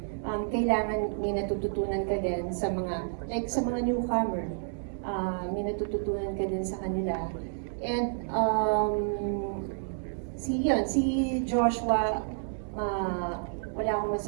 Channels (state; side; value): silent; left; digital silence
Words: Kailangan may natututunan ka din sa mga newcomer. May natututunan ka din sa kanila. And si Joshua, wala akong